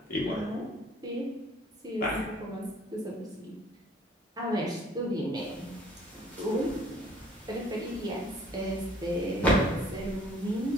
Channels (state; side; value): normal; both; correlation 0.57